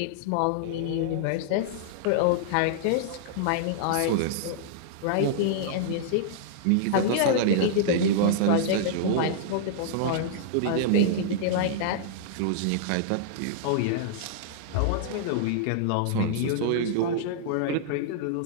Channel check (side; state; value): both; different; correlation -0.01